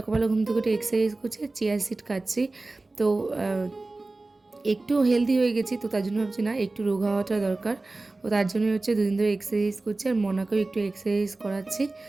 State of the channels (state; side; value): quieter; left; 3.2 dB